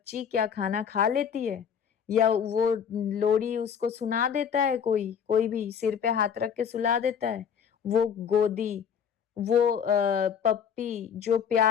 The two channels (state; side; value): quieter; right; 7.6 dB